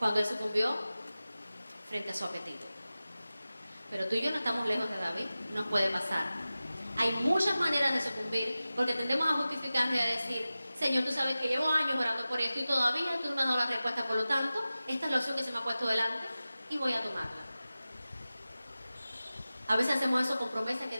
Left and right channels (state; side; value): inverted; both; correlation -0.96